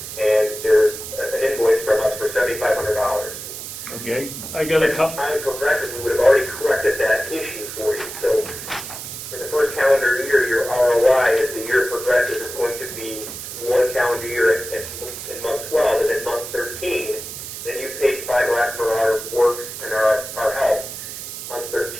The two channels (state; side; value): noise; right; hiss, 9 dB below the sound